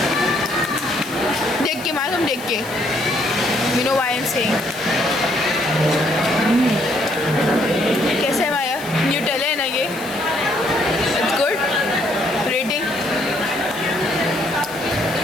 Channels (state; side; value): noise; left; hiss, 16 dB below the sound